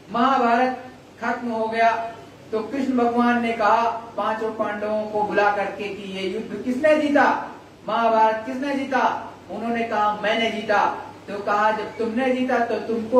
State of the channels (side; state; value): both; identical; correlation 1.00